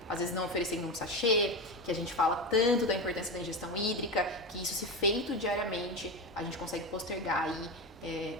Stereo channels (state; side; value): normal; both; correlation 0.19